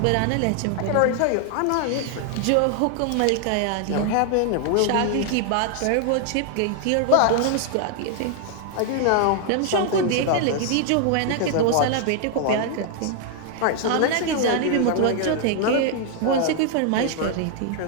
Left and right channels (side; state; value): both; different; correlation 0.00